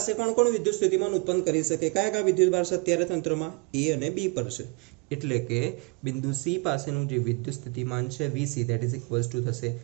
કોણ કોણ વિદ્યુત સ્થિતિમાન ઉત્પન્ન કરી શકે? કયા કયા વિદ્યુત ભાર છે અત્યારે તંત્રમાં? એ અને બી પર છે. એટલે કે બિંદુ સી પાસેનું જે વિદ્યુત સ્થિતિમાન છે VC that is equals to થશે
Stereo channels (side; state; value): left; quieter; 29.2 dB